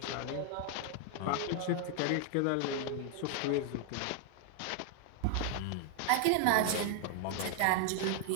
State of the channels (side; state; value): both; different; correlation 0.00